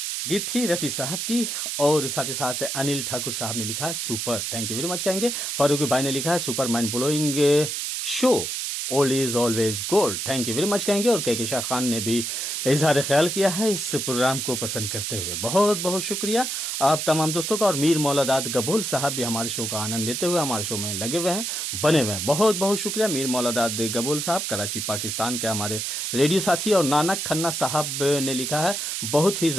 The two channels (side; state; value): right; noise; hiss, 2 dB below the sound